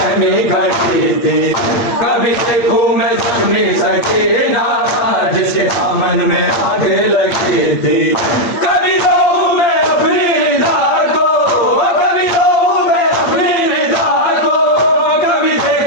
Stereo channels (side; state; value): right; late; 8.6 ms